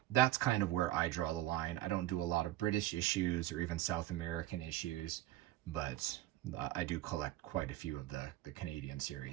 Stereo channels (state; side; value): quieter; left; 15.6 dB